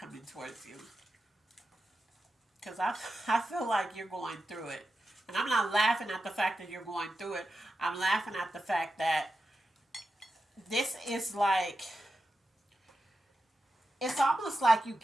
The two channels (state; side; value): normal; both; correlation 0.90